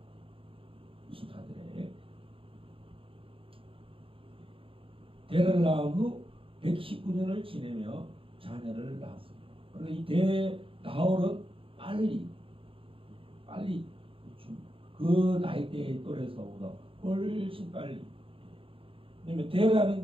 24절에 데라를 낳은 후 119년을 지내며 자녀를 낳았습니다. 그래서 이 나홀은 빨리 그 나이대의 또래에서보다 훨씬 빨리. 왜냐면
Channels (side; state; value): left; late; 0.26 ms